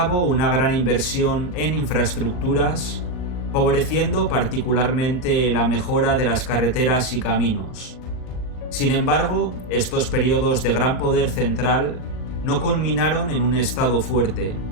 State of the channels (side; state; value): right; late; 39 ms